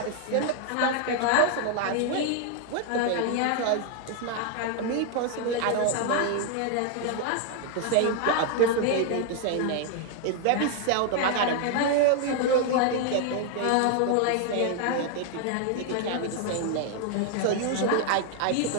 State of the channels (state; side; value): different; both; correlation 0.00